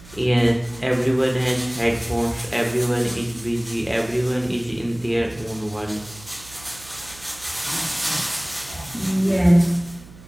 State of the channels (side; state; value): right; noise; hum, 20 dB below the sound